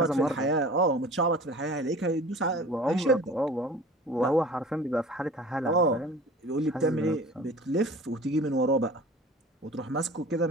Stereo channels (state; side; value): normal; both; correlation 0.42